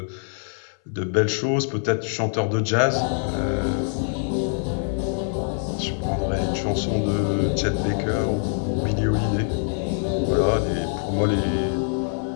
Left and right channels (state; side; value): silent; right; 62 dB below the other